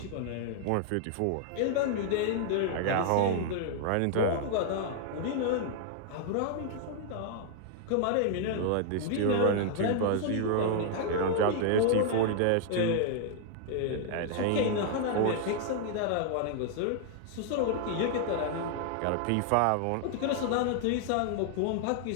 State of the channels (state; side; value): different; both; correlation 0.00